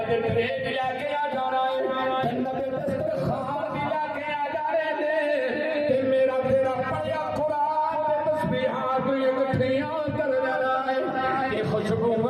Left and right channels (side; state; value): both; identical; correlation 1.00